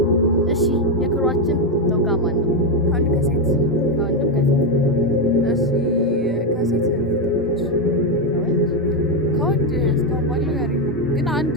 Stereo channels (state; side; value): normal; both; correlation 0.06